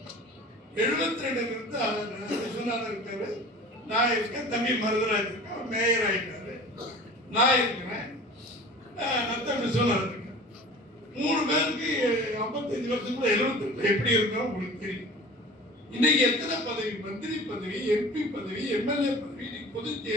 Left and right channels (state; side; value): normal; both; correlation 0.41